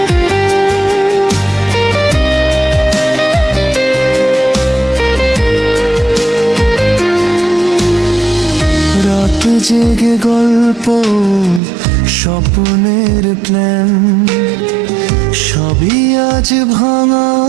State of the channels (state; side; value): drops out; left; at 11.6 s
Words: রাত জেগে গল্প স্বপ্নের প্ল্যান সবই আজ ভাঙা